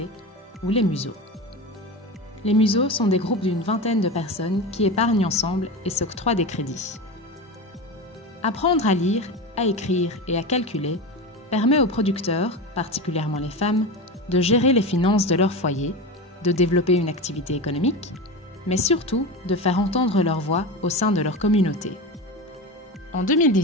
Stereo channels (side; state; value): both; normal; correlation 0.24